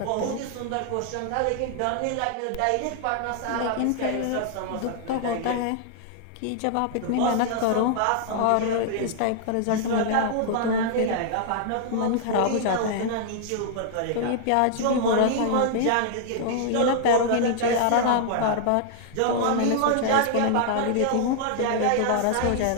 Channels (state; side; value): different; both; correlation -0.01